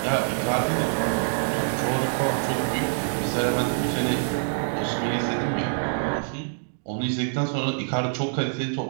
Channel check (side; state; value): left; silent; digital silence